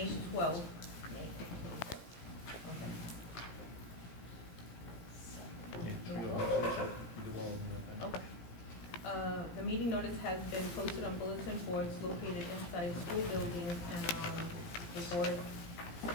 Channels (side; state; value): right; late; 17 ms